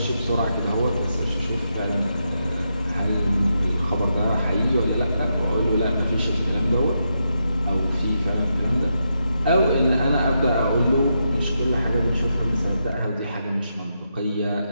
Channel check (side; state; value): both; inverted; correlation -0.83